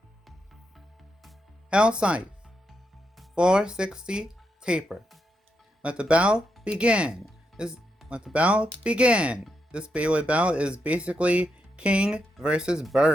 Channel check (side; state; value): both; normal; correlation 0.83